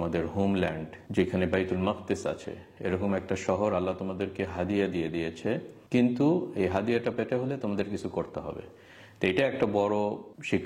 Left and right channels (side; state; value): both; identical; correlation 1.00